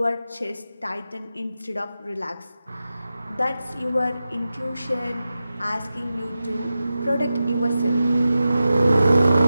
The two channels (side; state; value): both; inverted; correlation -0.93